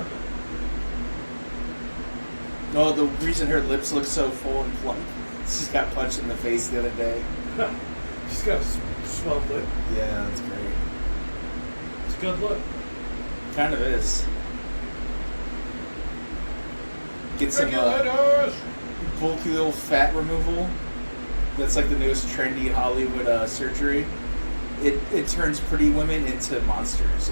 No, the reason her lips look so full and plump, she's got punched in the face the other day. She's got a swelled lip. Yeah, that's great. It's a good look. Kind of is. Get some Regulators! bulky little fat removal. That's like the newest trendy Hollywood surgery. It turns pretty women into monsters.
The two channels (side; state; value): both; inverted; correlation -1.00